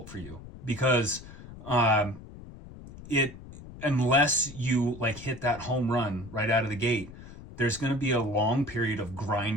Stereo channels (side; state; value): left; noise; rumble, 16 dB below the sound